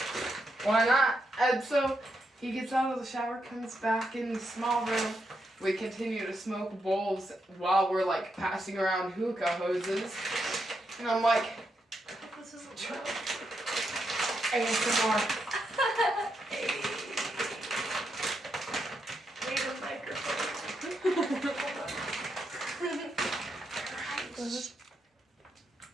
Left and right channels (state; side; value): normal; both; correlation 0.82